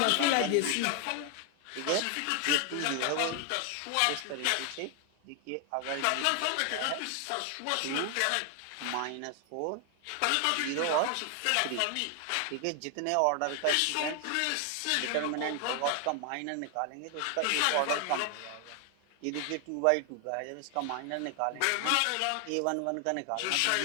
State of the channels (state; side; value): different; both; correlation 0.00